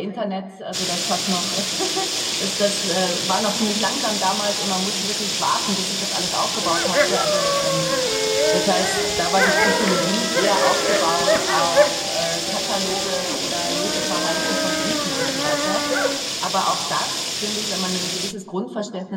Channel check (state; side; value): identical; both; correlation 1.00